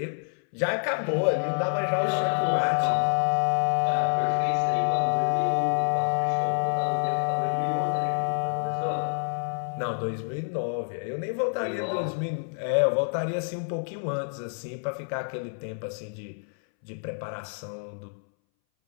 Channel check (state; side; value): silent; right; 60 dB below the other